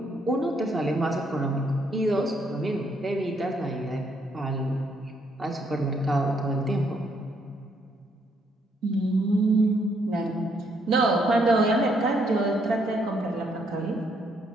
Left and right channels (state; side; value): normal; both; correlation 0.72